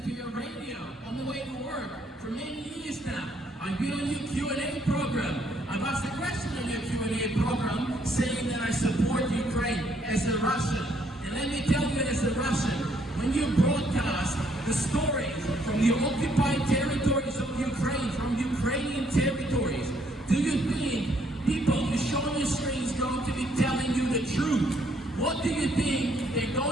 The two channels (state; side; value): normal; both; correlation 0.69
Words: For many years now, I've been on your Q&A program. I've asked a question on your Q&A program saying that I support Ukraine as a Russian. And let me tell you, as a Russian, when you broadcast the stories from the occupied territories of Ukraine, from Ukrainian territories, do you think people you show on your screens going to be telling you the truth? What do you think they're